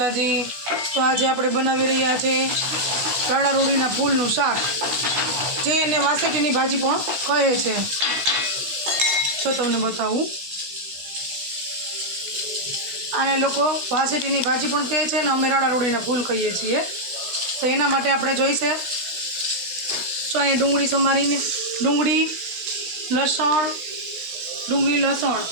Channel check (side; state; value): left; late; 16 ms